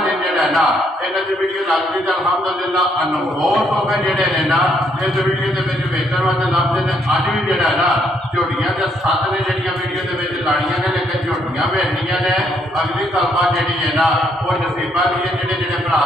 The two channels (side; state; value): both; normal; correlation 0.72